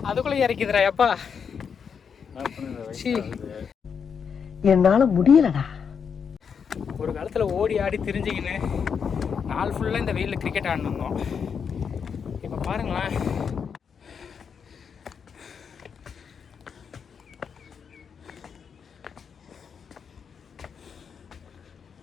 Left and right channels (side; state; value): right; quieter; 6.7 dB